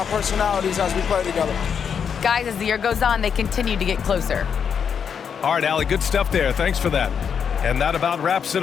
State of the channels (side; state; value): right; quieter; 7.1 dB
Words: personalities as we play together. Guys, as the year goes on, they continue to get closer. All right, Allie, good stuff there. Thanks for that. And that about wraps it